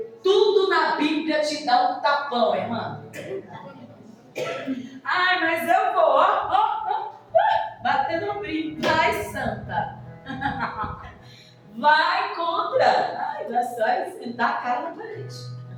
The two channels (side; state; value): both; identical; correlation 1.00